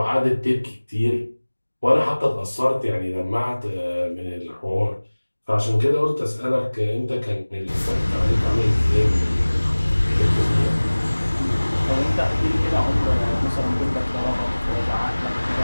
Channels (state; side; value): inverted; both; correlation -1.00